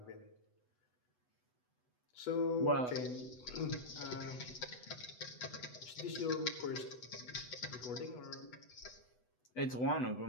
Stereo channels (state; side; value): late; right; 8.1 ms